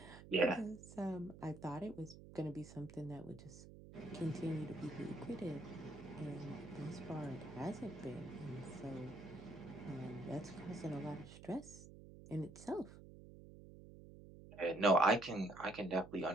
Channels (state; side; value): noise; right; hum, 16 dB below the sound